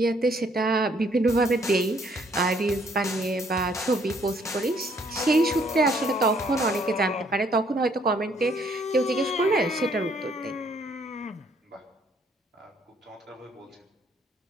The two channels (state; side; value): normal; both; correlation 0.66